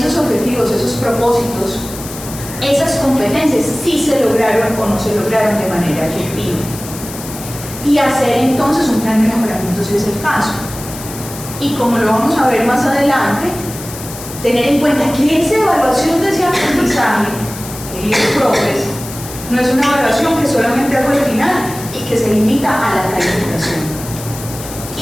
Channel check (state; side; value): noise; left; hiss, 12 dB below the sound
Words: objetivos, esos propósitos, esas competencias sí se lograron o no se lograron de manera efectiva. Y hacer entonces un plan de mejoramiento si es el caso. Y como lo vamos a ver más adelante, tener en cuenta que esa evaluación de ese aprendizaje, queridos profes, no es una evaluación que solamente hago al final y que se limita a la calificación.